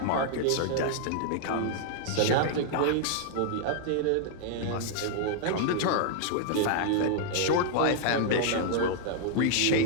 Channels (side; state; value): both; different; correlation -0.01